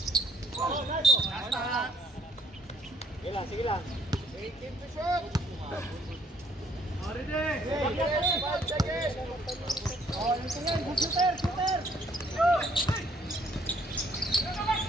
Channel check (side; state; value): both; normal; correlation 0.64